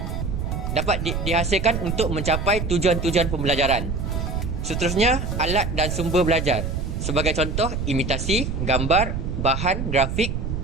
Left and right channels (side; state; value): right; noise; rumble, 3 dB below the sound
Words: dapat dihasilkan untuk mencapai tujuan-tujuan pembelajaran. Seterusnya, alat dan sumber belajar. Sebagai contoh, imitasi, gambar, bahan, grafik,